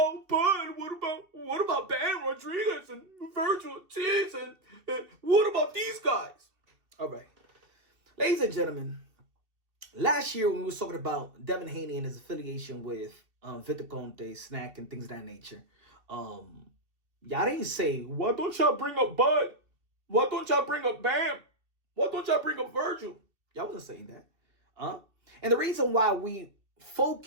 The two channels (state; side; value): late; left; 2.7 ms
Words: Bud? What about Bam Rodriguez and Virgil Ortiz and what about these guys? All right, ladies and gentlemen, last year when we was talking about Devin Haney and his affiliation with Victor Conte, SNAC, and things of that nature, y'all didn't say, why don't y'all bring up Bud? Why don't y'all bring up Bam? Why don't y'all bring up Virgil? Y'all wasn't saying that. And the reason why we